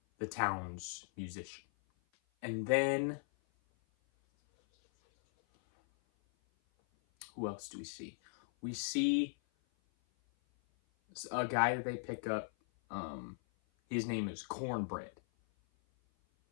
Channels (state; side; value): silent; right; 52 dB below the other